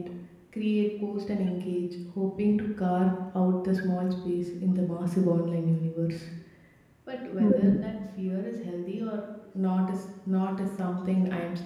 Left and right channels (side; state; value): both; identical; correlation 1.00